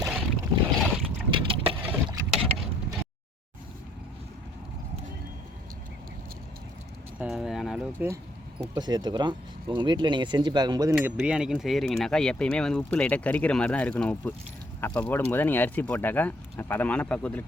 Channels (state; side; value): normal; both; correlation 0.65